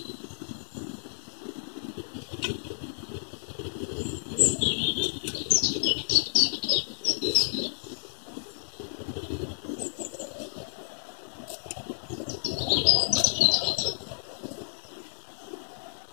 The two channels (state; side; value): silent; right; digital silence